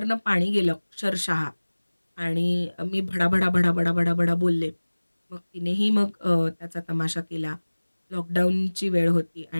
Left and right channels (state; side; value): inverted; both; correlation -1.00